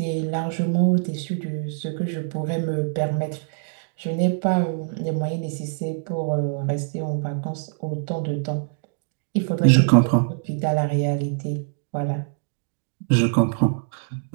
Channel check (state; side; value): silent; left; digital silence